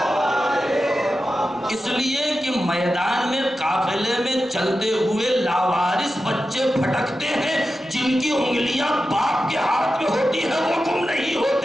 اس لیے کہ میدان میں قافلے میں چلتے ہوئے لاوارث بچے پھٹکتے ہیں، جن کی انگلیاں باپ کے ہاتھ میں ہوتی ہیں وہ گم نہیں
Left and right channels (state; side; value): normal; both; correlation 0.92